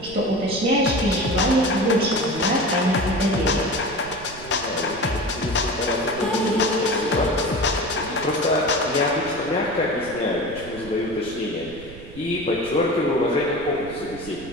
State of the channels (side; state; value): right; noise; rumble, 16 dB below the sound